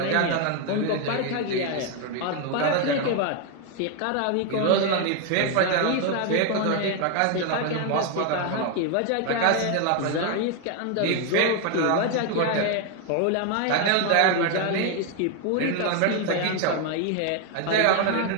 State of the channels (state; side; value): different; both; correlation 0.01